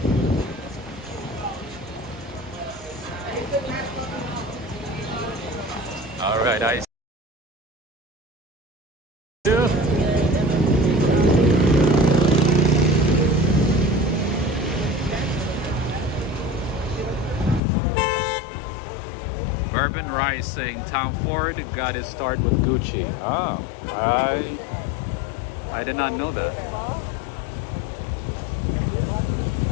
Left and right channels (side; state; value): right; drops out; at 17.6 s